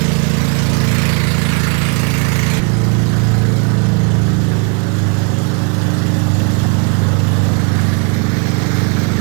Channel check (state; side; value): quieter; left; 35.9 dB